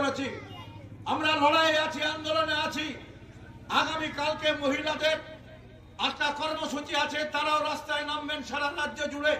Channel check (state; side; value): identical; both; correlation 1.00